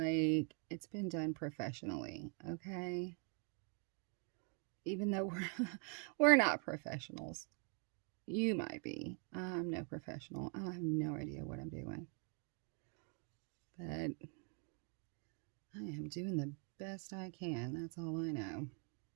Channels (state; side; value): quieter; left; 39.1 dB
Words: it's been done professionally, okay? Even though we're not professionals. You might be. I'm no professional. I have no idea what I'm doing. But I am doing the best I can. That's all I know.